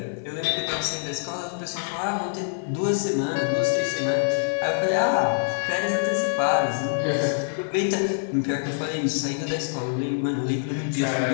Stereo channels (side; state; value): right; silent; 62 dB below the other